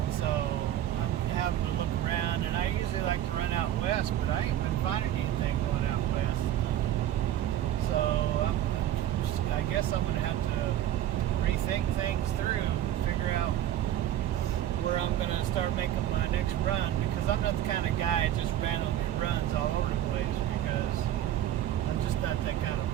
so I'm having to look around, and I usually like to run out west, but I ain't been finding anything going out west. So I guess I'm going to have to rethink things through, figure out where I'm going to start making my next run, because I'm not the kind of guy that just randomly runs all over the place, because I'm just not that kind of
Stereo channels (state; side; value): quieter; left; 12.0 dB